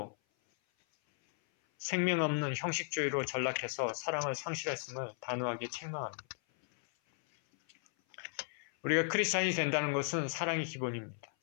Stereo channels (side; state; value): right; silent; 54 dB below the other